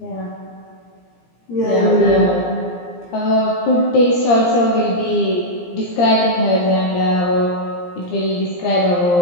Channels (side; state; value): right; late; 17 ms